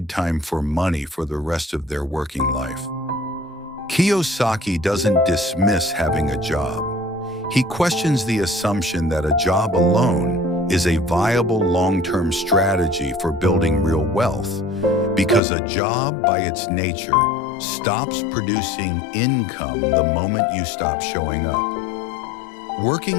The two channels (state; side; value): drops out; right; at 15.4 s